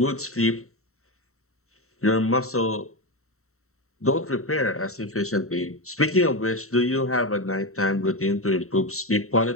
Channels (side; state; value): right; late; 0.63 ms